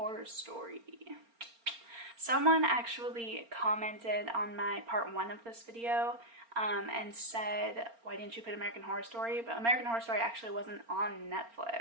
Story. Someone actually commented on my part 1 of this video and said, why didn't you put American Horror Story? But American Horror Story actually wasn't on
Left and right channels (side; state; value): left; late; 4.3 ms